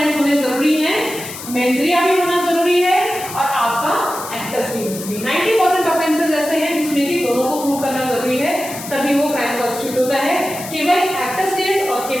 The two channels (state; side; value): noise; left; hiss, 11 dB below the sound